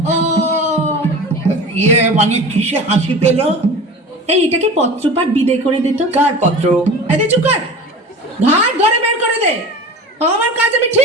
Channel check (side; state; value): both; normal; correlation 0.36